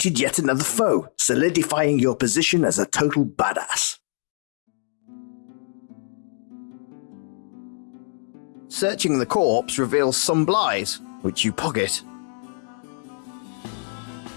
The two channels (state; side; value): silent; right; 61 dB below the other